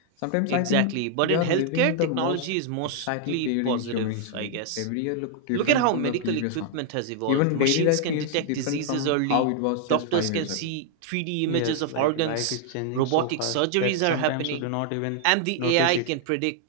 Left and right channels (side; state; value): both; different; correlation 0.00